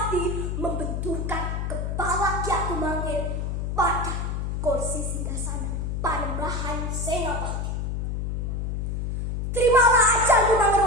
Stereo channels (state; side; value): noise; left; hum, 2 dB below the sound